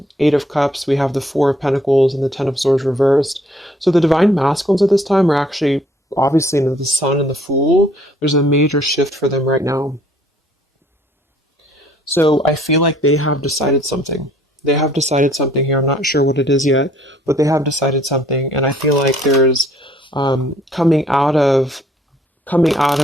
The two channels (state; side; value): normal; both; correlation 0.61